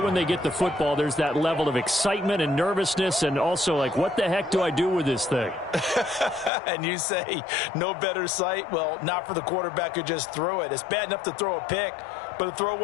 when they get the football, there's that level of excitement and nervousness, and also like, what the heck do I do with this thing? And you say, no better sight? Well, not for the quarterback who just threw it. It's bad enough to throw a pick, but to throw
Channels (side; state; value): right; drops out; at 6.5 s